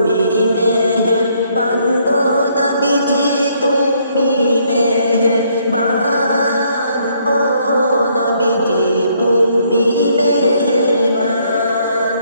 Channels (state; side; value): inverted; both; correlation -0.69